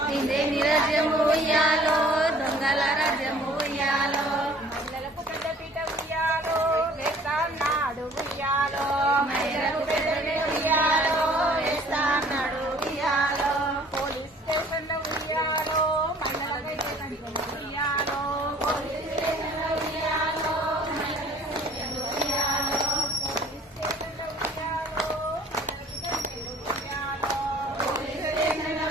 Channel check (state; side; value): normal; both; correlation 0.53